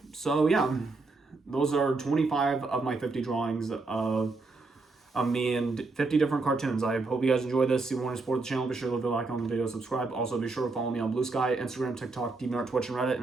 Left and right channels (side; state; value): left; quieter; 3.7 dB